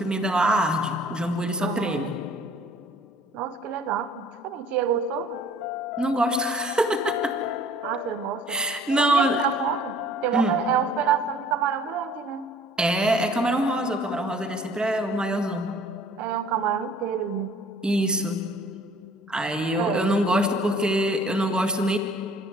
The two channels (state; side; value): normal; both; correlation 0.54